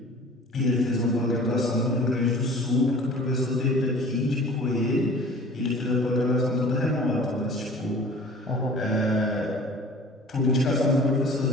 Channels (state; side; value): normal; both; correlation 0.45